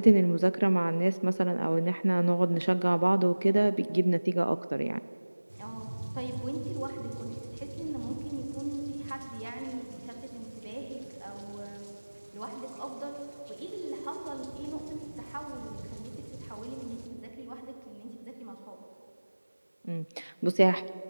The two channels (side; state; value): both; inverted; correlation -1.00